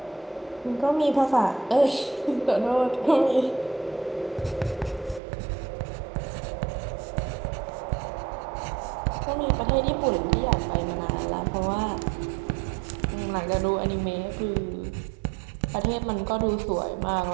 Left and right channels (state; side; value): drops out; left; at 5.2 s